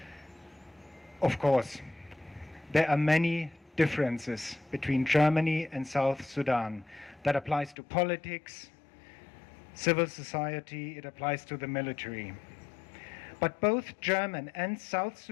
Of course, there are many differences between Germany and South Sudan. That applies to politics, civil society, it applies to the military. But both German and South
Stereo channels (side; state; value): right; drops out; at 7.8 s